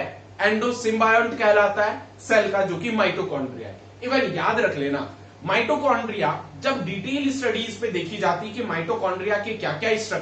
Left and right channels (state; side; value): identical; both; correlation 1.00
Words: एंडोसिम्बायोंट कहलाता है सेल का, जो कि माइटोकॉन्ड्रिया है। इवन याद रख लेना, माइटोकॉन्ड्रिया जब डिटेल स्टडीज पे देखी जाती है कि माइटोकॉन्ड्रिया के क्या क्या